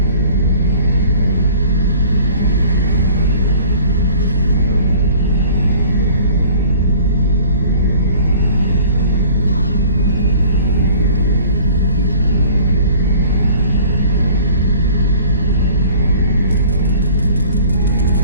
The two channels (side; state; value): both; inverted; correlation -0.50